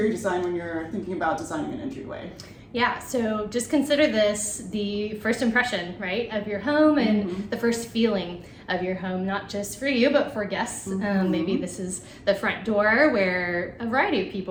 design when you're thinking about designing an entryway? Yeah, so just consider this the first impression, right, of your home and the first feeling of your home, not just for you, but for guests. Maybe this is the front door where a variety of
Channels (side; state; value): both; identical; correlation 1.00